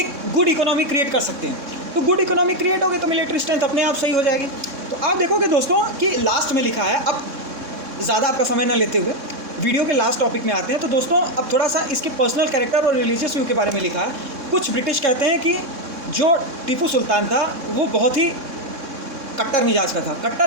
गुड इकोनॉमी क्रिएट कर सकते हैं। तो गुड इकोनॉमी क्रिएट होगी तो मिलिट्री स्ट्रेंथ अपने आप सही हो जाएगी। तो आप देखोगे दोस्तों कि लास्ट में लिखा है, अब ज़्यादा आपका समय न लेते हुए वीडियो के लास्ट टॉपिक में आते हैं। तो दोस्तों अब थोड़ा सा इसके पर्सनल कैरेक्टर और रिलीजियस व्यू के बारे में लिखा है। कुछ ब्रिटिश कहते हैं कि जो टीपू सुल्तान था वो बहुत ही कट्टर मिजाज का था।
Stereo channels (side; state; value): left; late; 3.6 ms